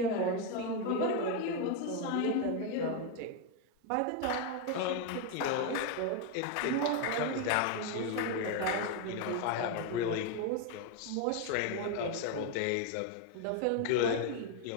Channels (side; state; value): both; different; correlation 0.01